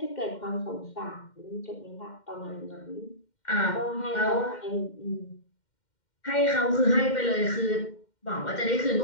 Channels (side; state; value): right; late; 2.1 ms